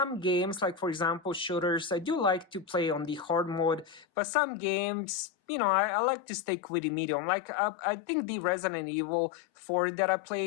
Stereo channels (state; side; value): drops out; right; at 4.0 s